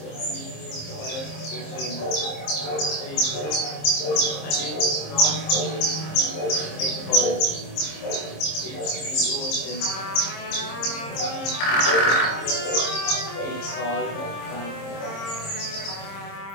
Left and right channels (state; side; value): late; right; 26 ms